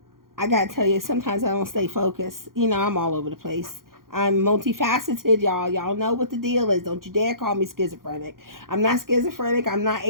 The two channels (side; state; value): left; late; 0.91 ms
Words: I gotta tell you, sometimes I don't stay focused. You know, I'm all over the place. I'm multifaceted, y'all. Y'all know what the deal is. Don't you dare call me schizophrenic. I'm not schizophrenic. I'm not